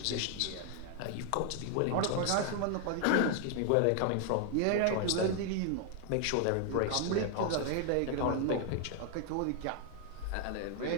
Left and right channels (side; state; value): both; different; correlation 0.00